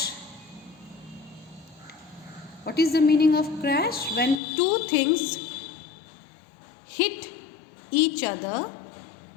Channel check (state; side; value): drops out; right; at 4.4 s